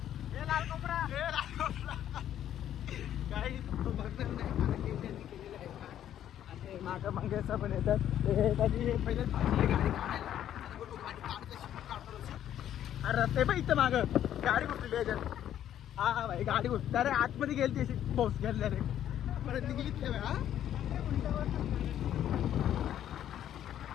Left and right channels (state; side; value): quieter; right; 10.9 dB